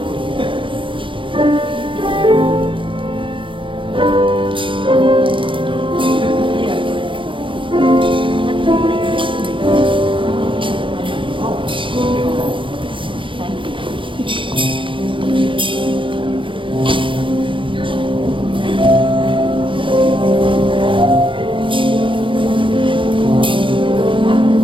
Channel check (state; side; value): late; left; 0.25 ms